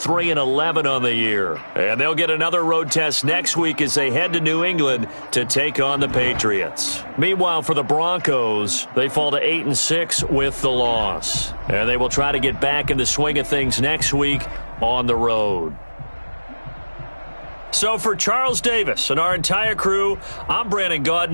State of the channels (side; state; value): both; inverted; correlation -1.00